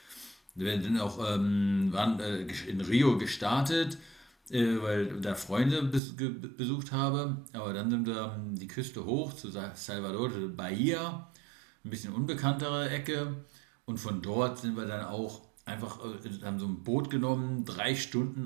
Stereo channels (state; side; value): drops out; left; at 6.0 s